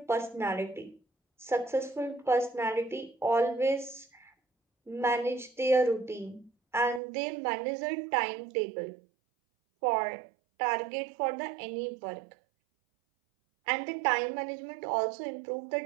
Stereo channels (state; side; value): drops out; left; at 7.0 s